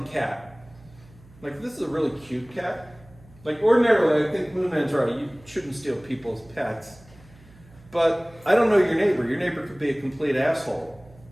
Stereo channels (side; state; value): right; noise; hum, 25 dB below the sound